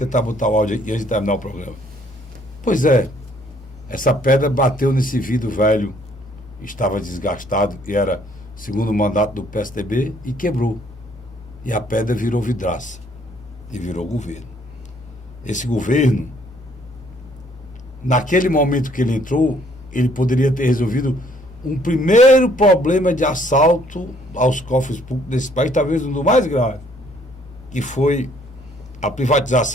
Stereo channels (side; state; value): both; normal; correlation 0.63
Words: botar o áudio aqui antes de terminar o programa. Pois é, essa pedra bateu nesse vidro velho, estava desgastado, e era segundo mandato do PSDB, e quebrou. E a pedra virou vidraça, e virou governo. Esse governo, naquele momento que ele entrou, ele poderia ter resolvido um primeiro problema de assalto aos cofres públicos desse país, talvez um dos mais graves, que foi a